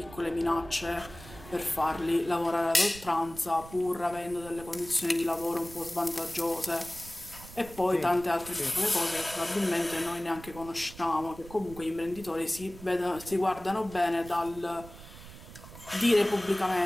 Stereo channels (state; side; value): noise; right; rumble, 16 dB below the sound